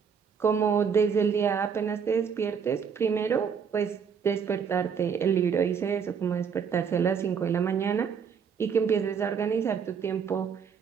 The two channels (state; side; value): quieter; left; 6.7 dB